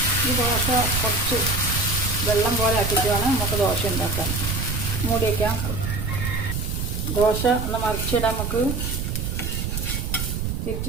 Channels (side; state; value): right; noise; rumble, 2 dB below the sound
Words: ഈ ദോശ കുറച്ച് വെള്ളം പോലെ ആക്കിയിട്ട് വേണം നമുക്ക് ദോശ ഉണ്ടാക്കാൻ. മൂടി വയ്ക്കാം. ദോശ ഒന്ന് മറിച്ചിടാൻ നമുക്ക്